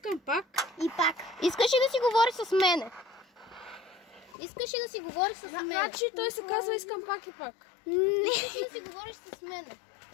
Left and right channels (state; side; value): drops out; right; at 4.4 s